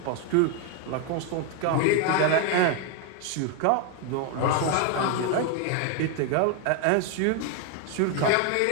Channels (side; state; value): both; different; correlation 0.01